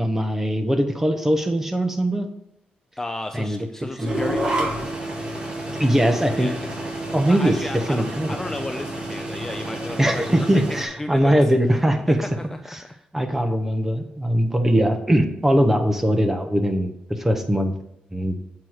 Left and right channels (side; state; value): both; normal; correlation 0.92